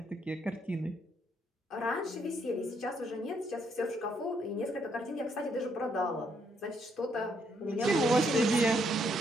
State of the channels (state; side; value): normal; both; correlation 0.73